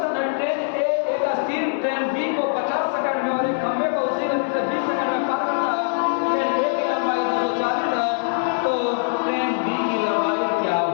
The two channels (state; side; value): silent; right; digital silence